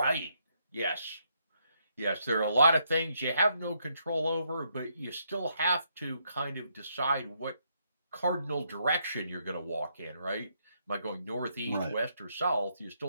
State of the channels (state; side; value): inverted; both; correlation -0.76